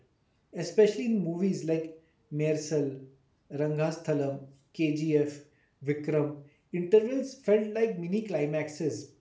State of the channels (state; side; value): identical; both; correlation 1.00